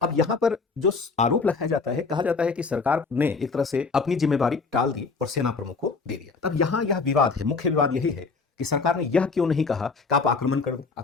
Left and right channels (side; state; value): right; quieter; 4.5 dB